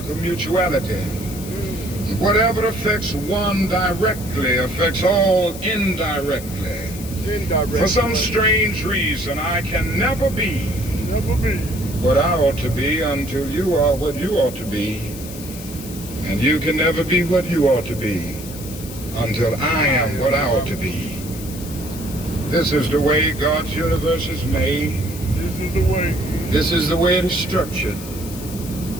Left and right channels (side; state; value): left; noise; hiss, 14 dB below the sound